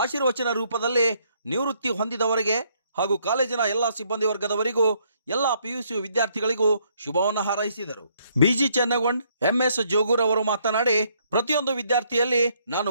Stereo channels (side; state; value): both; inverted; correlation -0.69